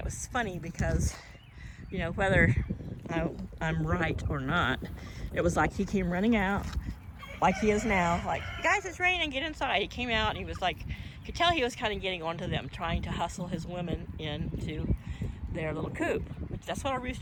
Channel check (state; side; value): identical; both; correlation 1.00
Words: was funny because, you know, whether I'm right or not, it was like he came running out like he is now, like, guys, it's raining, get inside. He came out and he was like, you could tell he was kind of getting onto them, trying to hustle his women into their little coop, which that's what a